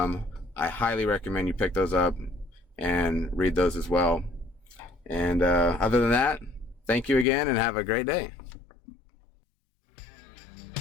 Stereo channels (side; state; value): right; drops out; at 7.2 s